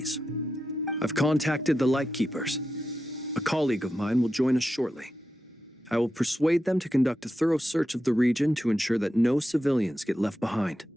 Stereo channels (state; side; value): normal; both; correlation 0.89